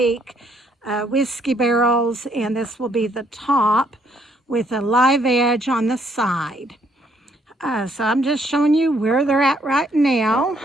whiskey barrels, and this will be the top with a live edge on the side. So I'm just showing you where they're at right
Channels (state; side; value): normal; both; correlation 0.69